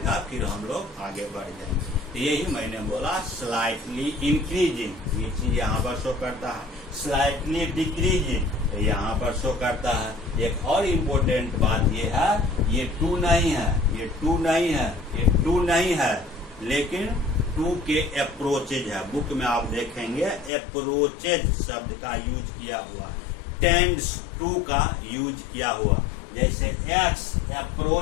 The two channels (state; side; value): drops out; right; at 20.5 s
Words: फिर हम लोग आगे बढ़ जाएंगे। तो यही मैंने बोला स्लाइटली इंक्रीजिंग, ये चीज यहाँ पर शो करता है, स्लाइटली डिक्रीजिंग तो यहाँ पर शो करता है। एक और इम्पोर्टेंट बात ये है, ये 2 नहीं है, ये 2 नहीं है, ये 2 नहीं है, लेकिन 2 के अप्रोचेज है। बुक में आप देखेंगे अप्रोचेज शब्द का यूज किया हुआ, टेंड्स टू का यूज किया हुआ। जैसे x